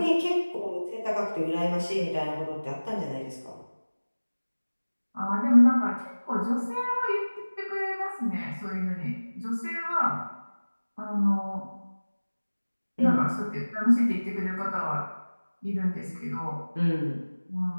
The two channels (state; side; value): inverted; both; correlation -1.00